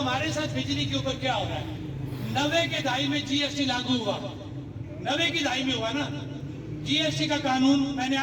ساتھ بجلی کے اوپر کیا ہو رہا ہے, 90 کے دہائی میں GST لاگو ہوا, 90 کی دہائی میں ہوا نا GST کا قانون, میں نے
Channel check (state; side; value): identical; both; correlation 1.00